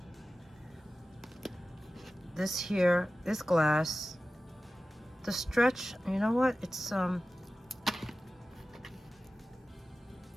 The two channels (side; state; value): both; normal; correlation 0.95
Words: This here is glass. The stretch, you know what? It's